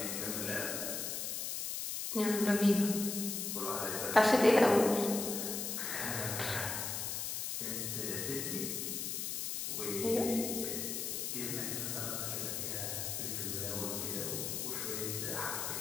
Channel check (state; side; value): noise; left; hiss, 3 dB below the sound